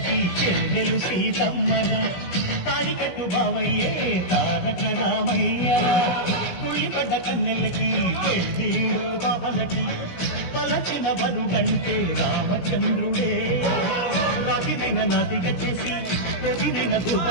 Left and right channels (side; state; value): right; late; 17 ms